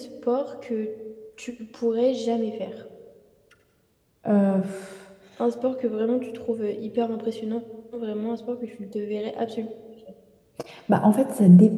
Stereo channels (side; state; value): both; identical; correlation 1.00